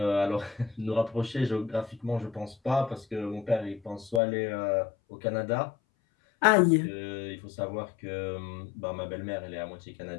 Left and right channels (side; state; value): right; drops out; at 4.2 s